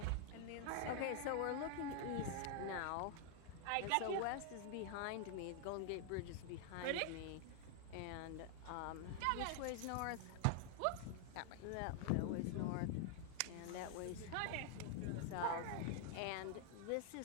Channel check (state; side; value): different; both; correlation 0.00